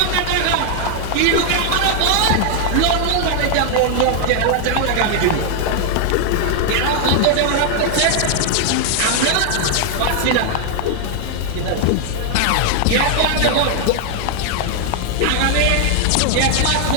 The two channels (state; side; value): different; both; correlation 0.00